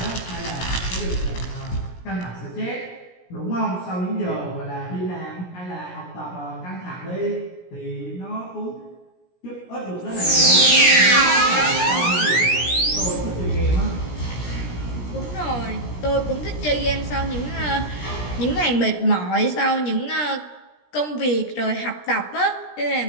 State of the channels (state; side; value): late; right; 17 ms